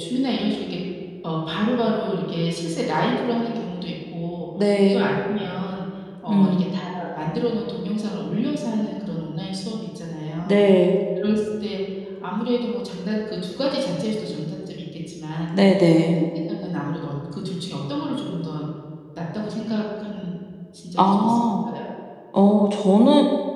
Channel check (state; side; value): identical; both; correlation 1.00